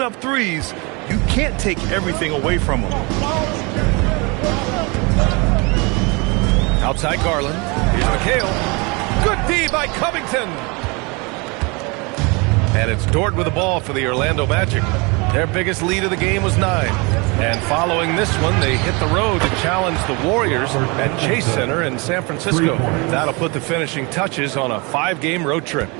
up threes, you can't take everything away from him. Outside Garland. Here's McHale. Good D by Covington. And it's Dort with the ball for the Orlando Magic. Their biggest lead of the game was 9. And following this one, they hit the road to challenge the Warriors at Chase Center in San Francisco. That'll put the finishing touches on a 5-game road trip.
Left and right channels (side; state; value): left; quieter; 28.6 dB